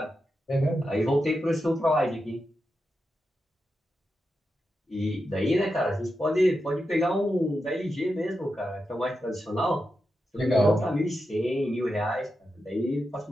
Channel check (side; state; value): both; normal; correlation 0.88